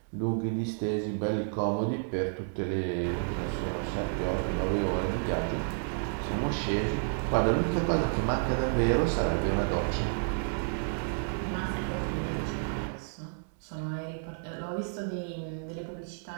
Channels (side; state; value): left; silent; 57 dB below the other